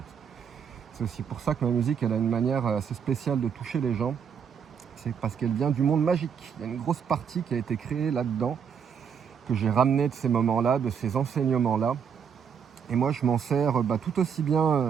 C'est aussi pour ça que ma musique, elle a une manière assez spéciale de toucher les gens. C'est parce qu'elle vient du monde magique. Il y a une grosse partie qui a été créée là-dedans, que j'ai ramené de ces moments-là, de ces enseignements-là. Et moi, je m'en sers tout aussi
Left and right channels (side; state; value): left; quieter; 7.2 dB